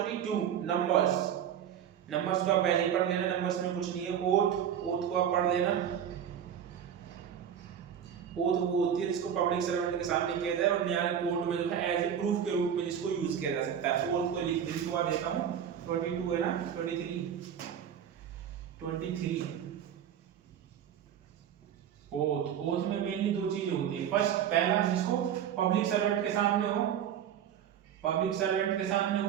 नंबर्स। नंबर्स को आप पहले पढ़ लेना, नंबर्स में कुछ नहीं है। ओथ को आप पढ़ लेना। ओथ वो होती है जिसको पब्लिक सर्वेंट के सामने किया जाए और न्याय कोर्ट में जो है एज ए प्रूफ के रूप में जिसको यूज किया जा सकता है। ओथ को लिखवा देता हूं, 22 है ना, 23 ओथ में मेनली दो चीजें होती है। फर्स्ट, पहला जिसको पब्लिक सर्वेंट के सामने हो, पब्लिक सर्वेंट के सामने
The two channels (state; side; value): quieter; left; 9.0 dB